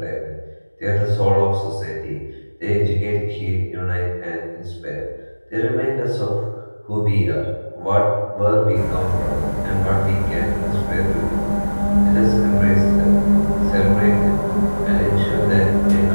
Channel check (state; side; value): inverted; both; correlation -1.00